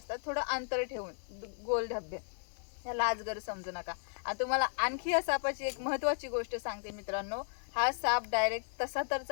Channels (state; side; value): silent; right; digital silence